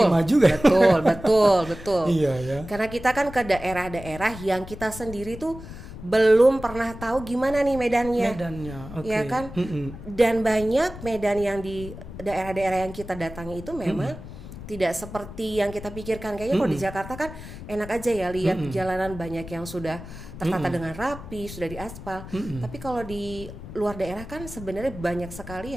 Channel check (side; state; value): left; noise; rumble, 13 dB below the sound